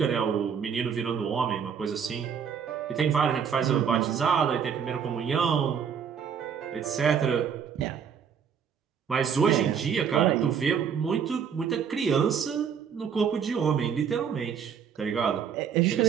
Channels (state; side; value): quieter; left; 7.4 dB